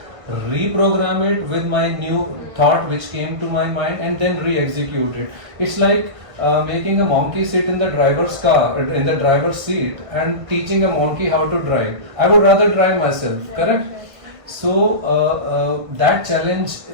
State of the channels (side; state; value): left; late; 1.5 ms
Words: reprogram it with my new thought which came to my mind, and then re-execute it. It's like making a monkey sit in the driver's car, in the driver's seat, and teaching a monkey how to drive. I would rather drive myself, correct? So that challenge